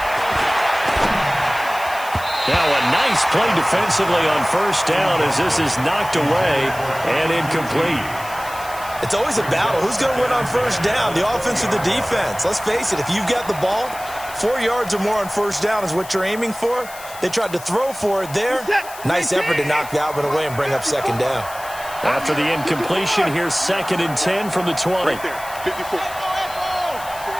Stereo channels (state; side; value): noise; left; hiss, 16 dB below the sound